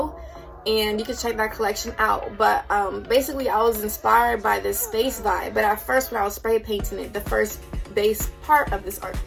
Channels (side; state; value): both; identical; correlation 1.00